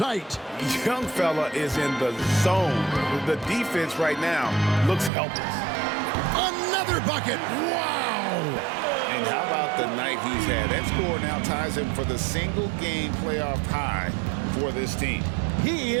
Young fella is in the zone. The defense right now looks helpless. Another bucket. Wow. And how about the night he's had? That score now ties him for the single-game playoff high for this team. He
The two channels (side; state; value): left; drops out; at 5.1 s